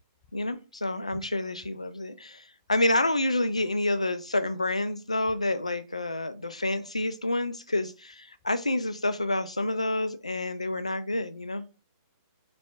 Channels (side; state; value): both; inverted; correlation -0.85